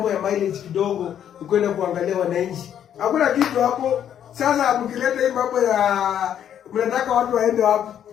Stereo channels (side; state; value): right; quieter; 9.7 dB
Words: ya mileage kidogo, ukwenda kuangalia wananchi. Hakuna kitu hapo. Sasa mkileta hii mambo ya mnataka watu waende hapo.